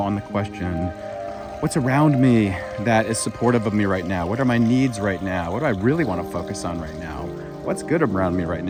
on the question, what's around me that is supportive of me right now? What are my needs right now? What do I really want to focus on right now? What's good around me right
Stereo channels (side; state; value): both; identical; correlation 1.00